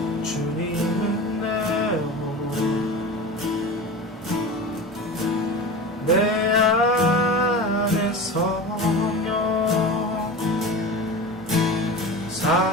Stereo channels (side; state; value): both; normal; correlation 0.31